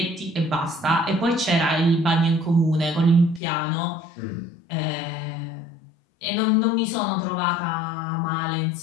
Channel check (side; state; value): right; drops out; at 3.4 s